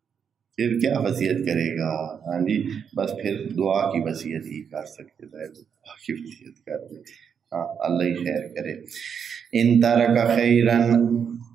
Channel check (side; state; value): left; quieter; 7.2 dB